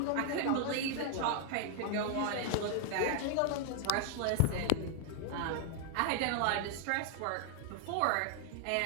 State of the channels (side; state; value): both; different; correlation 0.00